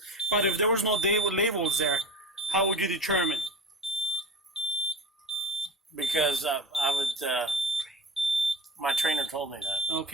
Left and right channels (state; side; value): normal; both; correlation 0.31